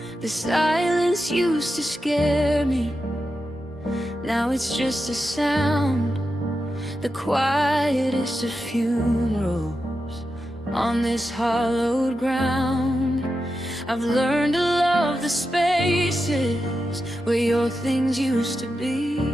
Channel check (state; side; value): normal; both; correlation 0.89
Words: The silence used to scare me, now it's just a sound. The quietest of funerals on this hallowed ground. I've learned to love the spaces where your things used to be.